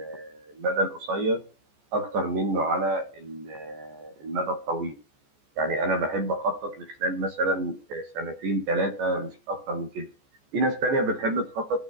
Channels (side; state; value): left; late; 14 ms